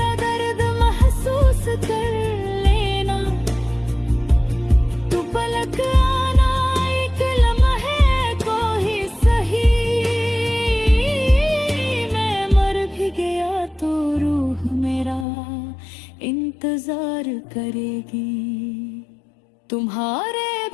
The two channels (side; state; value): right; drops out; at 15.2 s